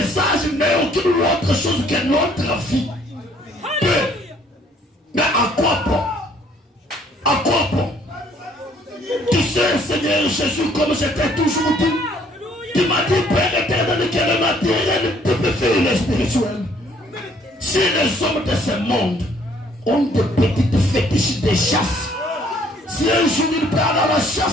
n'est aucune autre chose que notre vie. Mais à quoi bon? À quoi bon? Tu sais, Seigneur Jésus, comme je t'ai toujours dit, tu m'as dit, Père éternel, que le matériel te peut faire le spirituel. Si les hommes de ce monde ont des petites fétiches de chasse, si un jour il part à la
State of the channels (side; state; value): both; normal; correlation 0.62